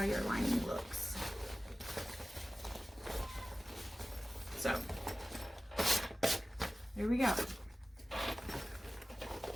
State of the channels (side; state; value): both; normal; correlation 0.96